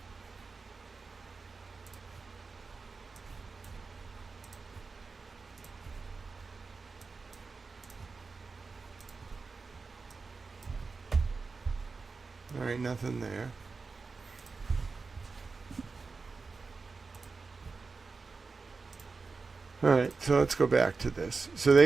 Alright, nothing there. Alright, so let's go back to this. So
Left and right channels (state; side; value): quieter; left; 4.3 dB